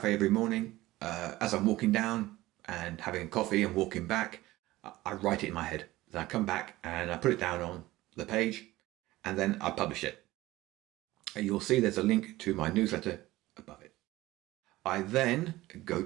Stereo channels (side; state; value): left; quieter; 17.7 dB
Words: every morning. As I'm walking down and having a coffee and walking back, I write it in my head. Then I come back and I put it down on the page and then I publish it. And you'll see there's a link to my newsletter above it. I then go